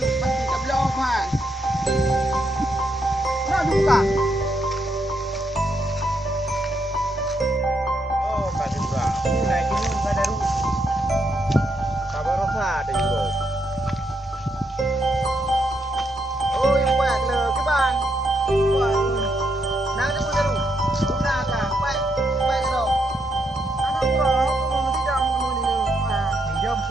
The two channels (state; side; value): normal; both; correlation 0.78